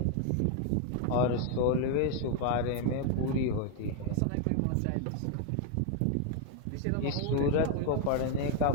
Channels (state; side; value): different; both; correlation 0.00